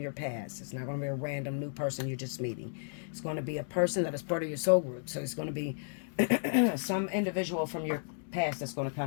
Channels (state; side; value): silent; right; digital silence